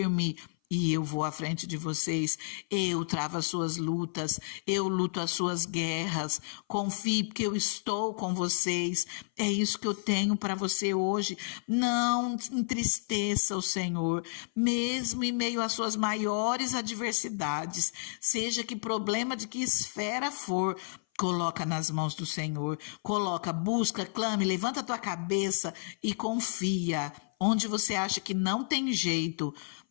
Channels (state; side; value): silent; right; 56 dB below the other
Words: E eu vou à frente de vocês, eu travo as suas lutas, eu luto as suas guerras, confie porque eu estou com vocês, é isso que eu tenho para você hoje. Não entristeça o Senhor, mesmo em meio às suas maiores adversidades, seja que problema de que esfera for, coloca nas mãos do Senhor, coloca, busca, clame, levanta a tua cabeça e confia. Onde você acha que não tem jeito,